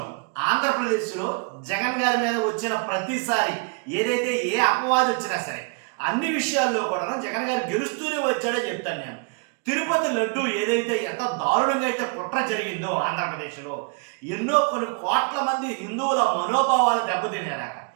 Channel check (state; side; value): quieter; left; 36.1 dB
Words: ఆంధ్రప్రదేశ్‌లో జగన్ గారి మీద వచ్చిన ప్రతిసారి ఏదైతే ఏ అపవాదు వచ్చినా సరే, అన్ని విషయాల్లో కూడాను జగన్ గారు గెలుస్తూనే వచ్చాడో చెప్తాను నేను. తిరుపతి లడ్డు ఏదైతే ఎంత దారుణంగా అయితే కుట్ర జరిగిందో ఆంధ్రప్రదేశ్‌లో, ఎన్నో కొన్ని కోట్ల మంది హిందువుల మనోభావాలు దెబ్బతినేలాగా.